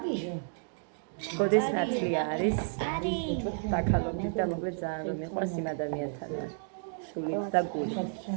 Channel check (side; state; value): left; silent; digital silence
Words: გოდეს ნათლი არის. დაკალობდით და მოკლედ ძალიან რომ მიყვარს იმ ადამიანთან ვარ. სულით და გულით.